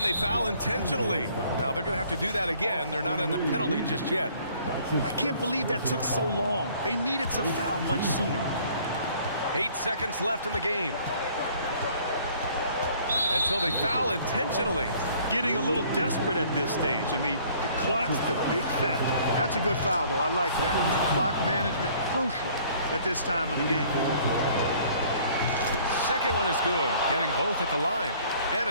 they foul intentionally. Now they're going to have to do that again. They're not in the penalty just yet. I can't believe that took so long. They needed to foul much sooner. 8 seconds left in the game. And so they foul intentionally. Getting a little desperate at this stage. I mean, the clock's the big factor. That's a good foul, though. I like that. I mean, clock management crucial at this time of the game. Second one is good, getting both at the line. And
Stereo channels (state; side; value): inverted; both; correlation -0.56